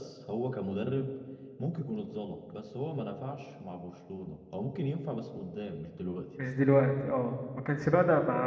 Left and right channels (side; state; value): both; identical; correlation 1.00